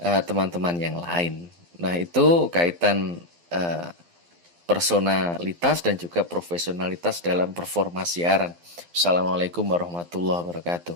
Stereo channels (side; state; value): left; late; 12 ms